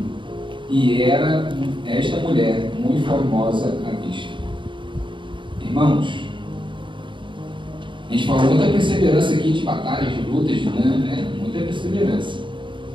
e era esta mulher muito formosa à vista. Irmãos, a gente falou muita perseverança aqui de batalhas, de lutas, muita perseverança.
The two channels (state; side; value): late; left; 0.24 ms